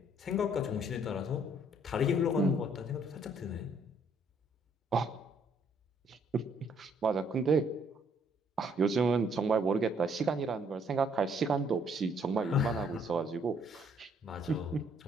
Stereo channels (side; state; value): both; normal; correlation 0.66